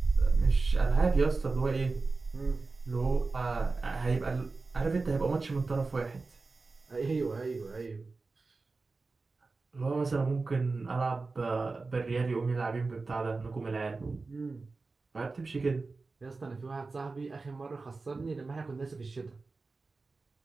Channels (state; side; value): quieter; left; 3.9 dB